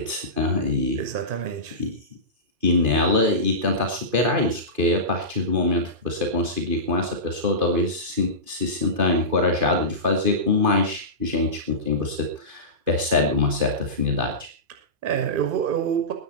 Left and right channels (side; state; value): left; late; 2.5 ms